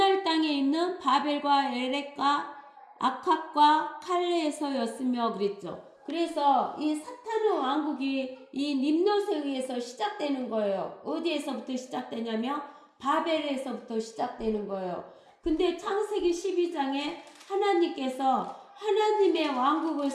땅에 있는 바벨과 에렉과 아캅과 칼레에서였으며 그랬죠. 그래서 이 사탄의 왕국이 이 림롯에 의해서 시작되는 거예요. 어디에서부터 시작되냐면 바벨에서부터 시작되는 거예요. 근데 창세기 12장에 하나님께서 하나님의 왕국을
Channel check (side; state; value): both; identical; correlation 1.00